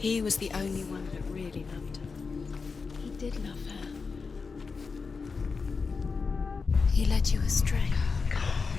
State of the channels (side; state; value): right; quieter; 4.8 dB